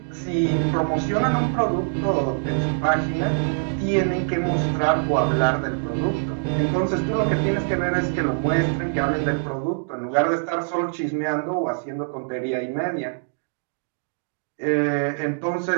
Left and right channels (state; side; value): silent; left; digital silence